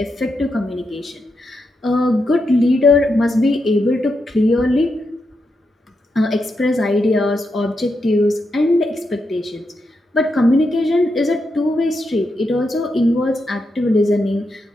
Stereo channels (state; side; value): normal; both; correlation 0.84